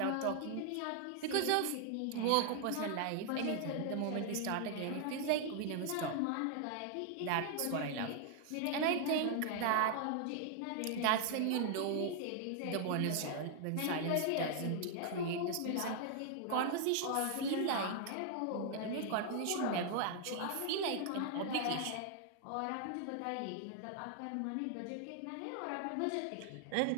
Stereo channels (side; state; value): both; different; correlation 0.00